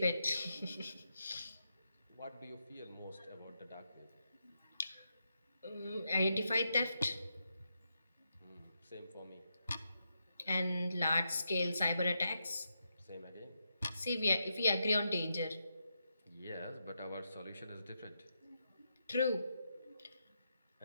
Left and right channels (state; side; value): inverted; both; correlation -0.84